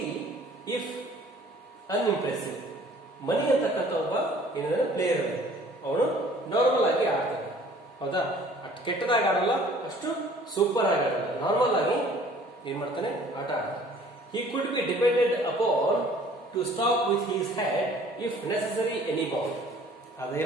if ಅನ್ಇಂಪ್ರೆಸಿವ್. ಮನಿ ಅಂತಕ್ಕಂಥ ಒಬ್ಬ ಏನಿದೆ ಪ್ಲೇಯರ್, ಅವನು ನಾರ್ಮಲ್ ಆಗಿ ಆಡ್ತಾನೆ, ಹೌದಾ? ಅಷ್ಟು ಕೆಟ್ಟದಾಗಿ ಆಡಲ್ಲ, ಅಷ್ಟು ಸೂಪರ್ ಆಗಿ ಆಡಲ್ಲ, ನಾರ್ಮಲ್ ಆಗಿ ಏನ್ ಮಾಡ್ತಾನೆ, ಆಟ ಆಡ್ತಾನೆ. He could be depended upon to stop with his head if necessary any ball.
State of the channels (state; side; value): normal; both; correlation 0.53